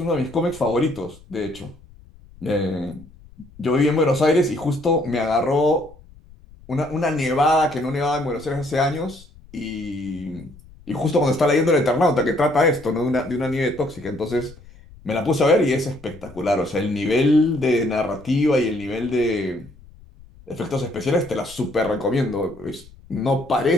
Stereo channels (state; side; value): noise; left; rumble, 23 dB below the sound